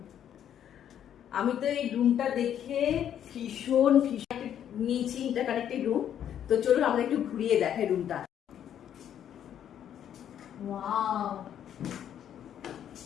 আমি তো এই রুমটা দেখে ভীষণ নিয়েছি, ইন্টারকানেক্টেড রুম। তো চলুন আমরা একটু ঘুরিয়ে দেখাই রুমটা। ওয়াও,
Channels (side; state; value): right; quieter; 9.8 dB